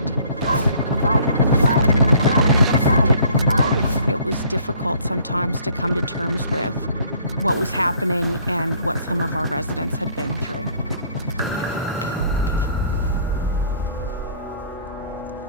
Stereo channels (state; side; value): inverted; both; correlation -0.57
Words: It was difficult sometimes to come to terms with what was happening and what some of our residents had been through.